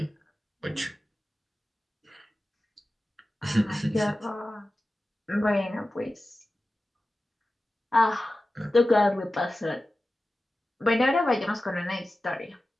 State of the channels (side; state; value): both; normal; correlation 0.95